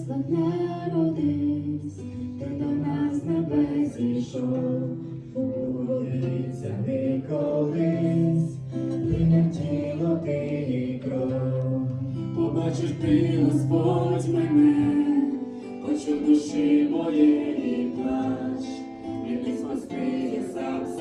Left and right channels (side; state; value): both; identical; correlation 1.00